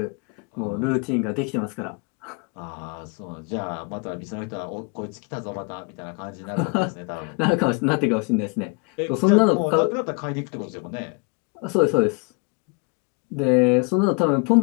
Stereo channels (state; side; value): quieter; right; 31.4 dB